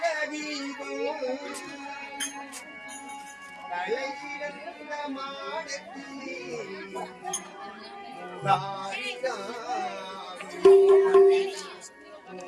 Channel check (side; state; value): both; identical; correlation 1.00